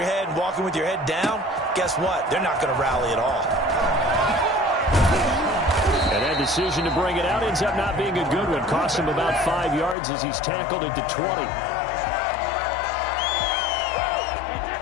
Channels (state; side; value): drops out; right; at 10.0 s